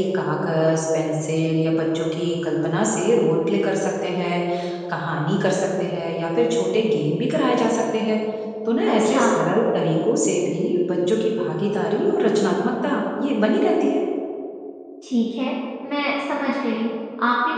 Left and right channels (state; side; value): identical; both; correlation 1.00